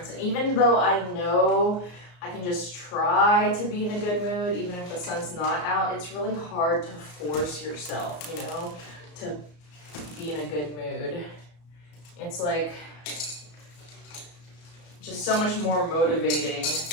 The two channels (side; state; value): right; late; 34 ms